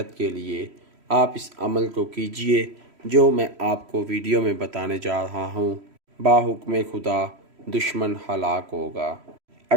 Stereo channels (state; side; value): late; left; 3.1 ms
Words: کے لیے آپ اس عمل کو کیجئے جو میں آپ کو ویڈیو میں بتانے جا رہا ہوں۔ باحکم خدا دشمن ہلاک ہوگا۔